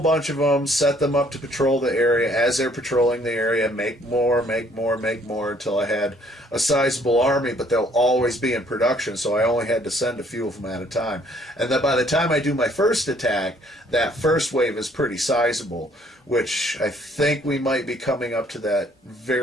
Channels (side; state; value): both; normal; correlation 0.62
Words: bunch of them, set them up to patrol the area. As they're patrolling the area, make more, make more, make more, until I had a sizable army, but they'll always be in production, so I only had to send a few of them at a time. And then by the time I do my first attack, that first wave is pretty sizable, which I think we might be coming up to that